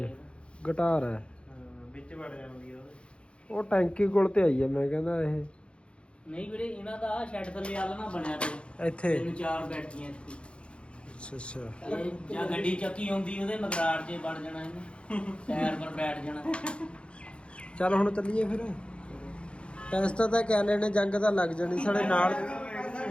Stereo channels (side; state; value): right; late; 0.058 ms